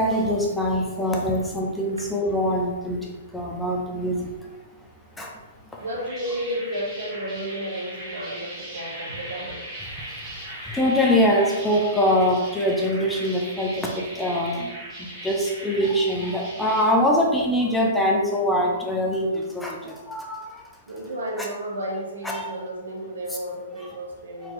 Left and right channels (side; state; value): both; normal; correlation -0.07